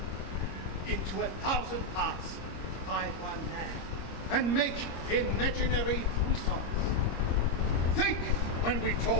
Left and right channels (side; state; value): right; late; 26 ms